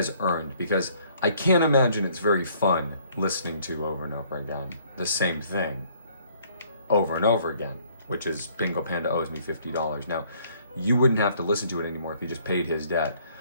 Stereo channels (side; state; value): both; inverted; correlation -0.61